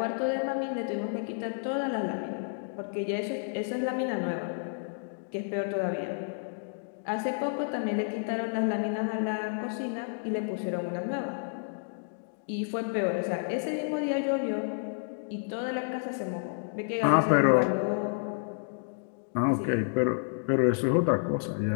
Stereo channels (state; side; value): silent; right; digital silence